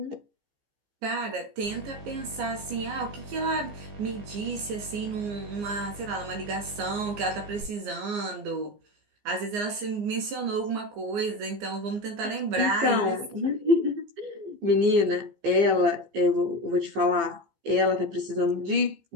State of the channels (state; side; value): late; left; 15 ms